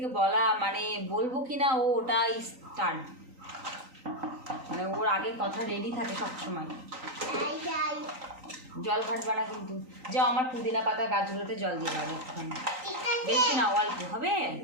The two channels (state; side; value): late; left; 3.9 ms